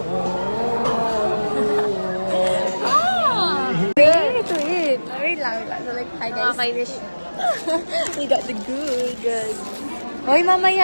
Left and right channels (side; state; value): both; inverted; correlation -1.00